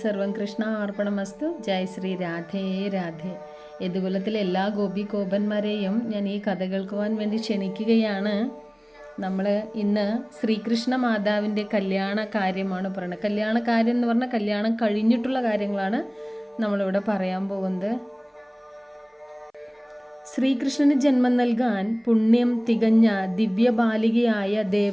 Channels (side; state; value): both; identical; correlation 1.00